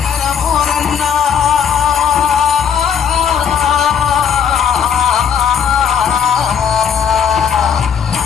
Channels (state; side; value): quieter; right; 7.4 dB